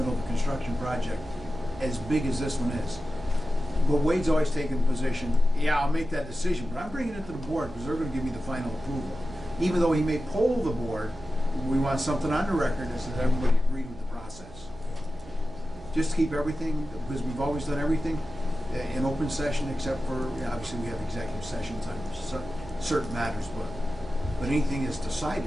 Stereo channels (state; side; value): noise; right; hum, 18 dB below the sound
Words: of a construction project as big as this one is. But Wade's always taken the position, yeah, I'll make that decision, but I'm bringing it to the board because they're going to give me the final approval. Even though he may poll the board, we want something on the record that says everybody agreed with the process. Just to keep everything, because we've always done everything in open session, except for, obviously we have executive sessions on certain matters, but anything is decided,